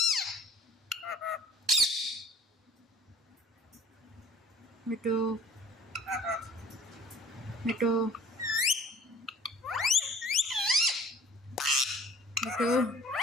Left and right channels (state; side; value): normal; both; correlation 0.51